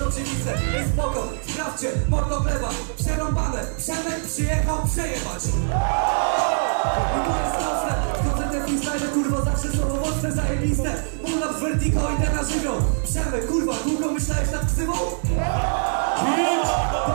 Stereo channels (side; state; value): left; silent; digital silence